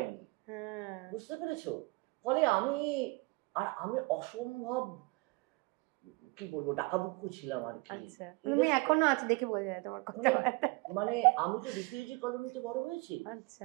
বুঝতে পেরেছো? ফলে আমি অসম্ভব কি বলবো ডাকাবুক্কু ছিলাম আর কি। আচ্ছা, তুমি এখনো আছে দেখে বোঝা যায় তোমার কথা। মানে আমি তো রিফিউজি কলোনিতে বড় হয়েছি।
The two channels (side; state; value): left; quieter; 26.9 dB